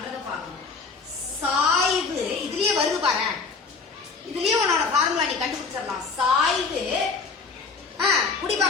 பார்க்கணும். சாய்வு இதுலயே வருது பாரு. இதுலயே உன்னோட ஃபார்முலா நீ கண்டுபிடிச்சிடலாம். சாய்வு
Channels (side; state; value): right; quieter; 4.7 dB